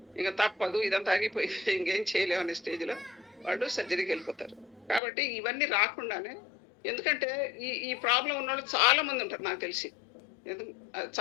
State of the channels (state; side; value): drops out; right; at 5.0 s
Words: ఇంకా తప్పదు, ఇదంతా ఆగిపోయింది, ఇంకేం చేయలేము అనే స్టేజ్లో వాళ్ళు సర్జరీకి వెళ్ళిపోతారు. కాబట్టి ఇవన్నీ రాకుండానే, ఎందుకంటే ఈ ప్రాబ్లం ఉన్న వాళ్ళు చాలా మంది ఉంటారు నాకు తెలిసి.